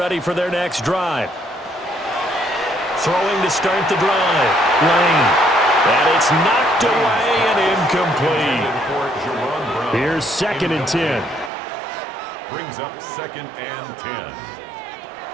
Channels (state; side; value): drops out; left; at 11.5 s